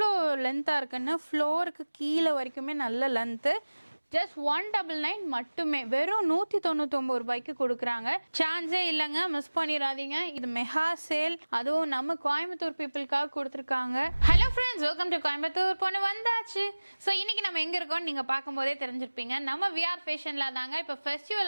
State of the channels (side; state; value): both; inverted; correlation -1.00